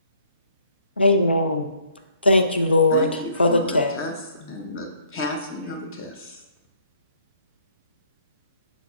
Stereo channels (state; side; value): inverted; both; correlation -0.63